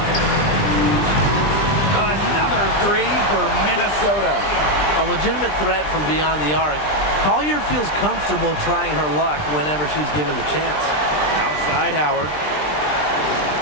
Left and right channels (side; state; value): right; late; 20 ms